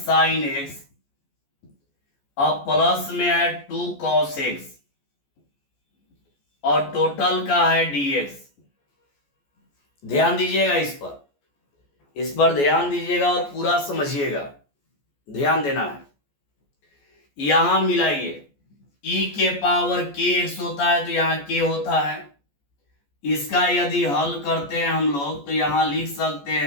साइन x और प्लस में है 2 cos x और टोटल का है dx। ध्यान दीजिएगा इस पर ध्यान दीजिएगा और पूरा समझिएगा। ध्यान देना है। यहां मिलाइए, e के पावर kx होता है तो यहाँ k होता है। इसका यदि हल करते हैं हम लोग तो यहां लिख सकते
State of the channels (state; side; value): late; right; 14 ms